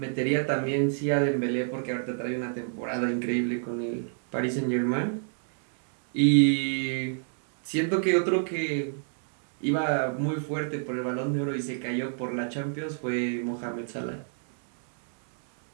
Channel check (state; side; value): silent; left; digital silence